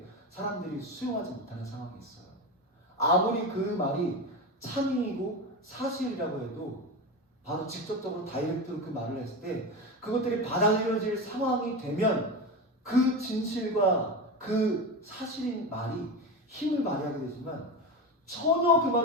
사람들이 수용하지 못하는 상황이 있어요. 아무리 그 말이 참이고 사실이라고 해도 바로 직접적으로 다이렉트로 그 말을 했을 때 그것들이 받아들여질 상황이 되면 그 진실과 그 사실인 말이 힘을 발휘하게 되지만 전혀 그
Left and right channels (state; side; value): normal; both; correlation 0.21